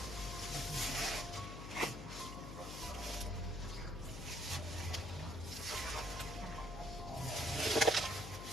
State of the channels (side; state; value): left; noise; hum, 8 dB below the sound